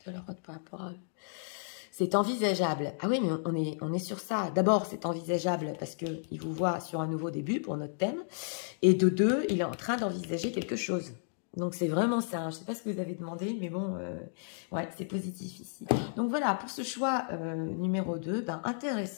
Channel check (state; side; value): silent; right; digital silence